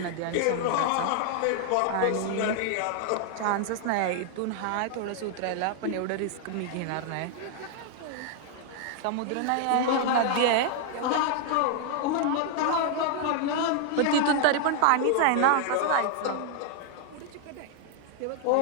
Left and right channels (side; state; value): both; different; correlation 0.00